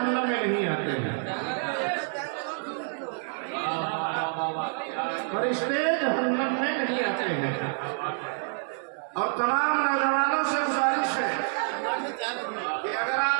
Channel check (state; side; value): silent; left; 59 dB below the other